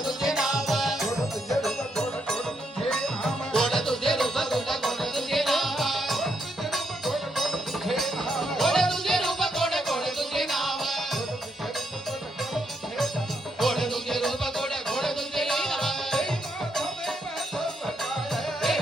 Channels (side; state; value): both; normal; correlation 0.78